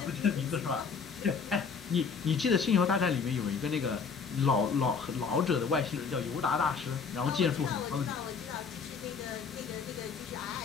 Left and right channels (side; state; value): right; quieter; 5.7 dB